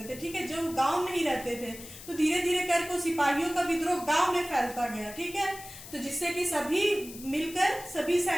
थे। ठीक है, जो गांव में ही रहते थे, तो धीरे धीरे करके सिपाहियों का विद्रोह गांव में फैलता गया। ठीक है, तो जिससे कि सभी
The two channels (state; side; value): noise; left; hiss, 15 dB below the sound